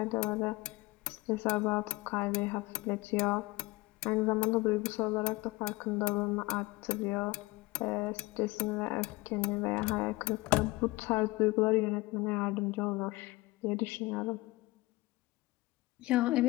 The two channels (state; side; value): quieter; right; 21.5 dB